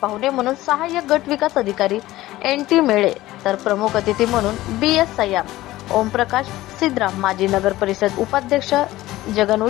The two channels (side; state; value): right; quieter; 16.6 dB